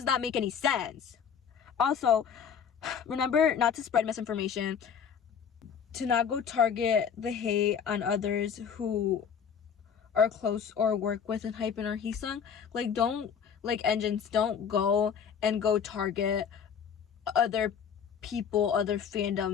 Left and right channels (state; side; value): quieter; right; 7.3 dB